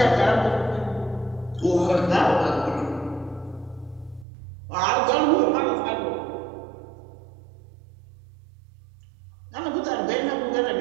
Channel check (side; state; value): left; drops out; at 4.2 s